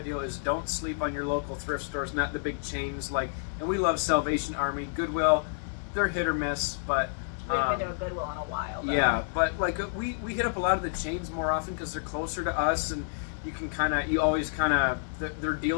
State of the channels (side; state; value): right; silent; digital silence